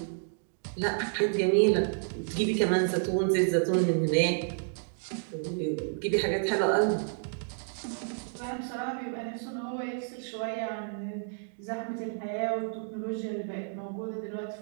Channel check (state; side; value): silent; left; digital silence